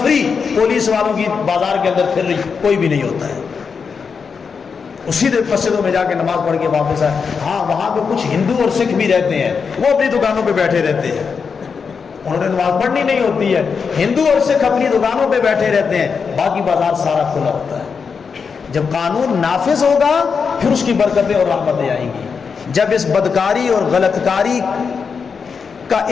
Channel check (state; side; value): quieter; right; 5.7 dB